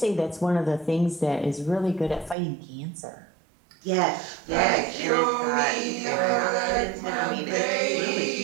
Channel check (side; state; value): left; drops out; at 2.4 s